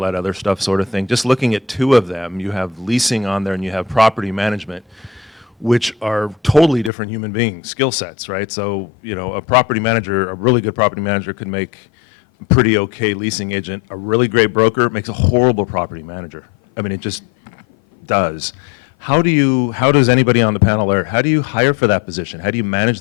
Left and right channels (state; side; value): drops out; right; at 6.9 s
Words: that other stuff sort of thing. Just looking at 2 of them, you have leasing on there and you have property management, which are totally different human being skill sets, right? So, you know, a really good property manager could make a pretty okay leasing agent. A really great broker makes a horrible property manager. I mean, it just does. How does anybody on the panel there, how do you hire for that position? How do you